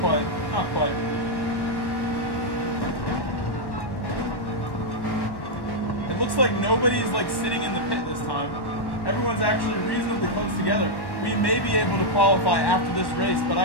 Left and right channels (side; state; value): right; late; 1.1 ms